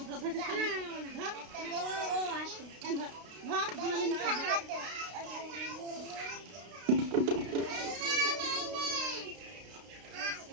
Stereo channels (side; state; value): left; late; 32 ms